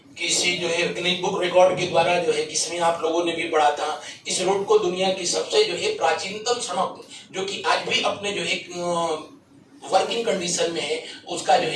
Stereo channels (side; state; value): both; identical; correlation 1.00